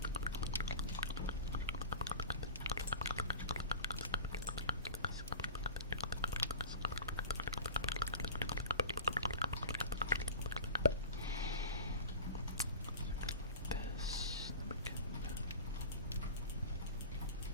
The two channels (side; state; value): both; inverted; correlation -0.36